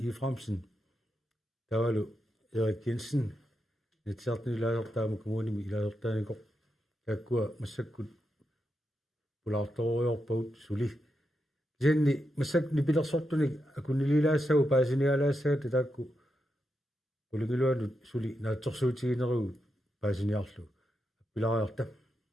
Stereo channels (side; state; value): both; normal; correlation 0.85